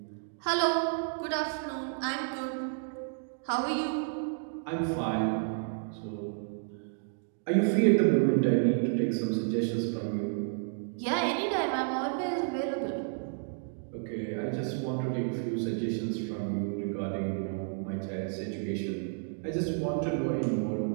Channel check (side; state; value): left; silent; digital silence